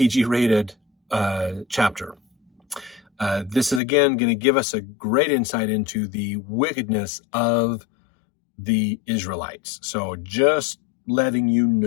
chapter. This is, again, going to give us a great insight into the wickedness of the Israelites. So just letting you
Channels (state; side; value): drops out; right; at 3.8 s